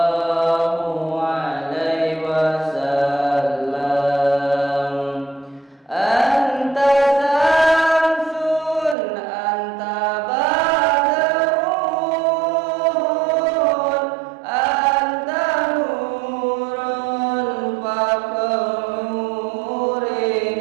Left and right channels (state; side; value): drops out; left; at 9.0 s